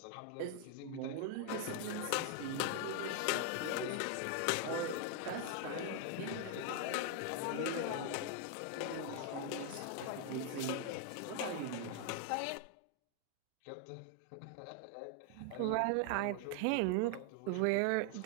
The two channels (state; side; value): different; both; correlation 0.00